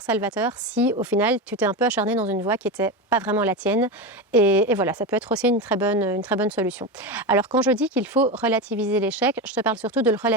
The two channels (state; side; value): normal; both; correlation 0.18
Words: salvateur, si au final tu t'es un peu acharné dans une voie qui n'était pas vraiment la tienne. Et voilà, ça peut être aussi une très bonne solution. Alors quand je dis qu'il faut relativiser l'échec, je te parle surtout de le